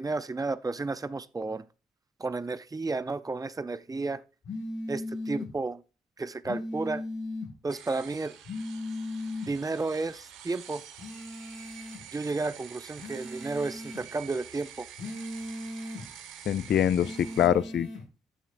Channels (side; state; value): both; normal; correlation 0.69